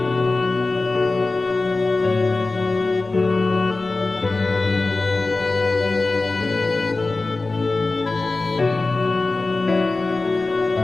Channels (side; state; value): right; quieter; 3.4 dB